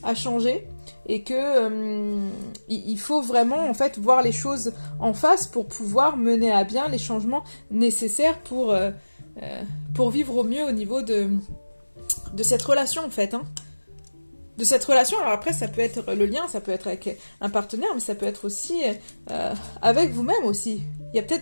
a changé. Et que il faut vraiment en fait voir les choses en face pour pouvoir mener à bien les changements nécessaires pour vivre au mieux au niveau de cette relation en fait. Hein. De cette relation, alors après ça peut être le lien, ça peut être avec un partenaire, mais ça peut être aussi avec vous-même aussi. Il y a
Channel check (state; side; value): inverted; both; correlation -1.00